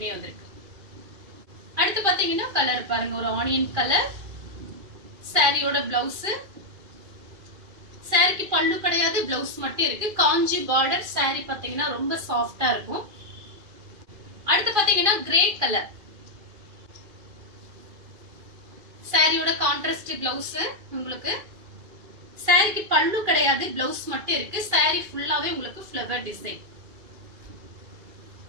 வந்திருக்கு. அடுத்து பாத்தீங்கன்னா கலர் பாருங்க, ஒரு ஆனியன் கலர். சாரியோட பிளவுஸ், சாரிக்கு பல்லு கிடையாது, பிளவுஸ் மட்டும் இருக்கு. காஞ்சி பார்டர். சாரி பாத்தீங்கன்னா ரொம்ப சாஃப்டா இருக்கும். அடுத்து பாத்தீங்கன்னா கிரே கலர். சாரியோட கான்ட்ராஸ்ட் பிளவுஸ் உங்களுக்கு. சாரிக்கு பல்லு கிடையாது, பிளவுஸ் மட்டும் இருக்கு. சாரி ஃபுல்லாவே உங்களுக்கு ஃப்ளவர் டிசைன்.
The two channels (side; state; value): left; late; 2.5 ms